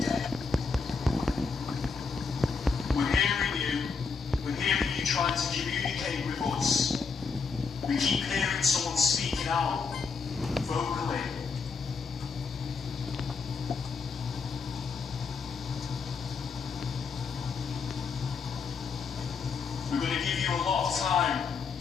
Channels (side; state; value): right; quieter; 5.0 dB